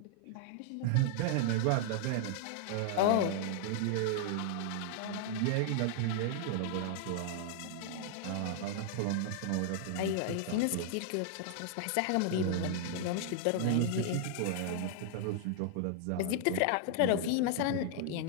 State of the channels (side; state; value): both; different; correlation 0.00